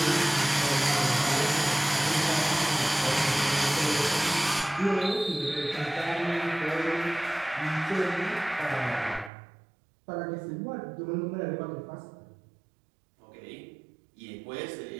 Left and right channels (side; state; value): left; drops out; at 9.3 s